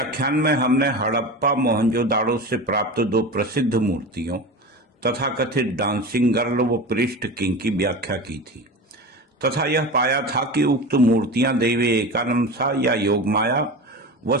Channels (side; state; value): both; normal; correlation 0.28